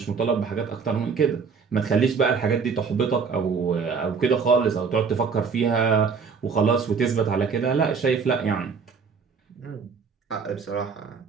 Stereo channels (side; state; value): left; quieter; 5.6 dB